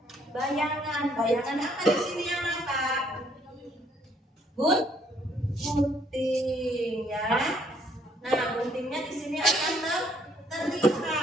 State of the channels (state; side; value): normal; both; correlation 0.66